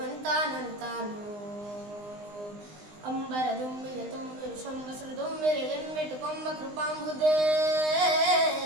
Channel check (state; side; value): late; left; 19 ms